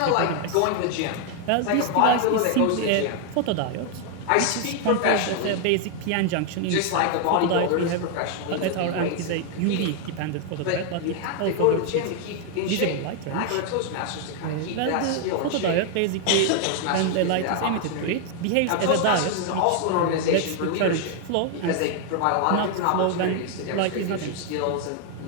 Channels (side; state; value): both; different; correlation 0.00